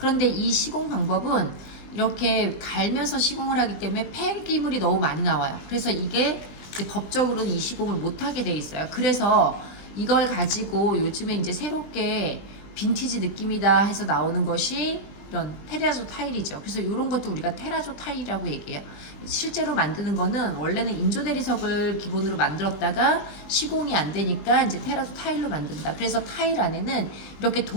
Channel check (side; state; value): right; late; 20 ms